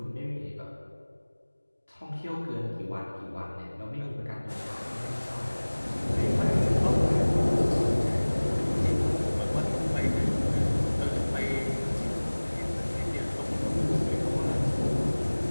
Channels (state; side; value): inverted; both; correlation -1.00